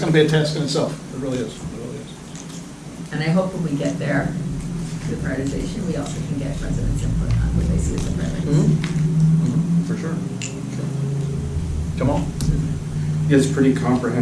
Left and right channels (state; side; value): identical; both; correlation 1.00